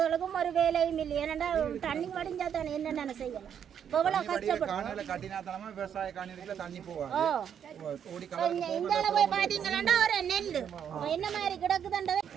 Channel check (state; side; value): quieter; left; 8.5 dB